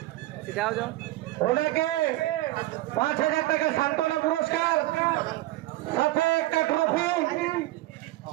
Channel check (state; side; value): quieter; left; 17.1 dB